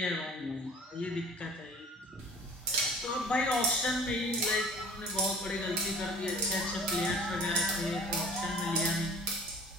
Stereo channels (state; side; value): normal; both; correlation 0.46